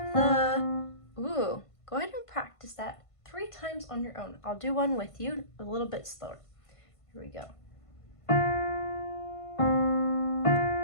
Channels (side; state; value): right; late; 1.5 ms